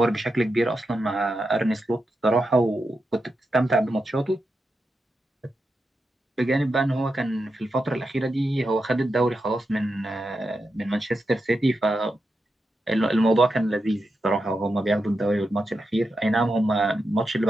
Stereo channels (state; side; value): normal; both; correlation 0.87